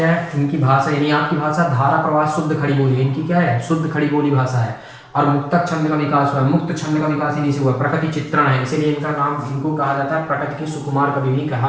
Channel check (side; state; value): both; identical; correlation 1.00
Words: है? इनकी भाषा, यानी आपकी भाषा धारा प्रवाह शुद्ध खड़ी बोली है। इनकी क्या है? शुद्ध खड़ी बोली भाषा है। और मुक्तक छंद का विकास हुआ है। मुक्त छंद का विकास इन्हीं से हुआ। प्रकृति चित्रण है, इसीलिए इनका नाम, इनको कहा जाता है प्रकृति के सुकुमार कवि भी